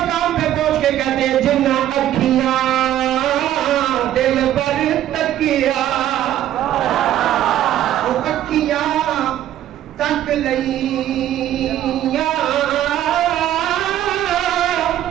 پہ پہنچ کے کہتے ہیں جنہ اکھیاں دل پر تکیا, وہ اکھیاں تک لئیاں,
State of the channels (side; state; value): left; quieter; 12.1 dB